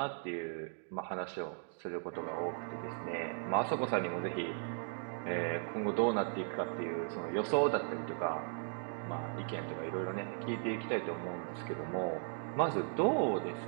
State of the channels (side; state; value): left; silent; 53 dB below the other